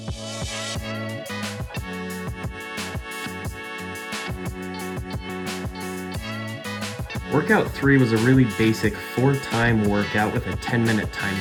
Workout 3 was a really basic 4-time workout with a 10-minute time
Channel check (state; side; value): identical; both; correlation 1.00